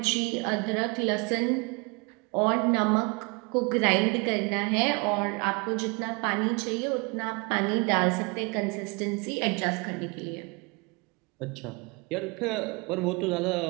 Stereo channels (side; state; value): left; quieter; 29.9 dB